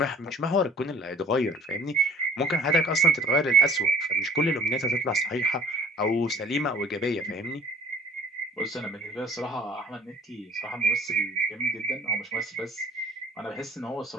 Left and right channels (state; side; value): normal; both; correlation 0.50